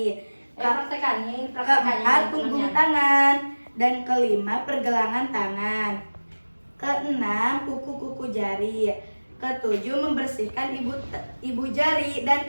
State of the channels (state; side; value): inverted; both; correlation -1.00